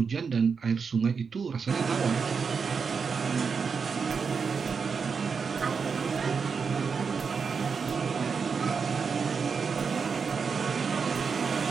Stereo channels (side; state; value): left; quieter; 5.6 dB